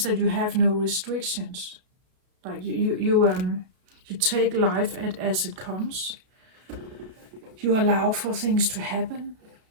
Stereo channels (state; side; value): late; left; 32 ms